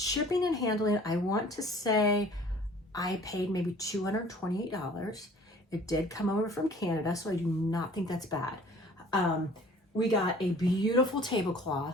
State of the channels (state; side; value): normal; both; correlation 0.51